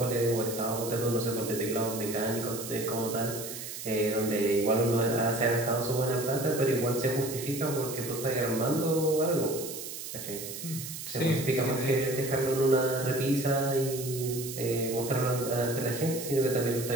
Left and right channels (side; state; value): right; noise; hiss, 9 dB below the sound